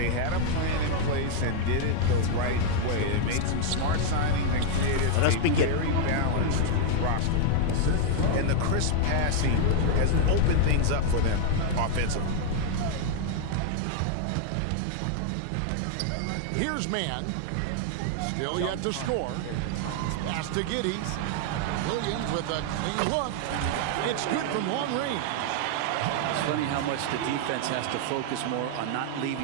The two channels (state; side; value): different; both; correlation 0.00